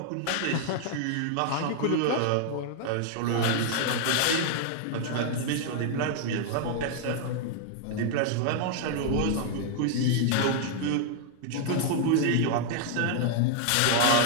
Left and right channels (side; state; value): both; different; correlation 0.00